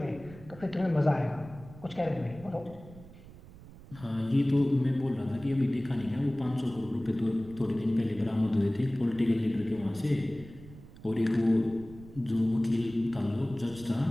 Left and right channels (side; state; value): right; noise; rumble, 18 dB below the sound